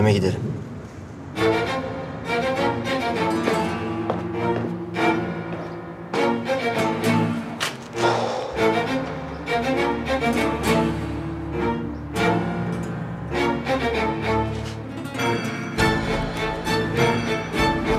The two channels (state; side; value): identical; both; correlation 1.00